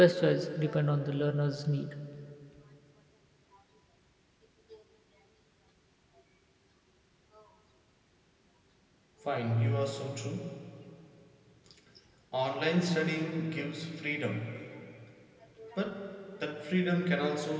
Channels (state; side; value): identical; both; correlation 1.00